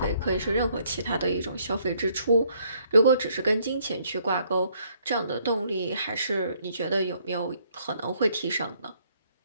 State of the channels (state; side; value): inverted; both; correlation -0.67